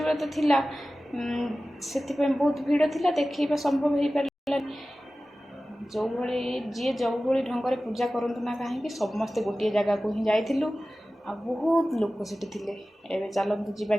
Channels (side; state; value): both; normal; correlation 0.96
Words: व्रत थिला से बहुत भीड़ थिला देखा संभव हो पारा जो भाई जी जो भाई ढंग से पूजा करतु ना कहीं समस्ते गोटे जगह को ही जाइलु आ बहुत लोग से एवं चलतु जा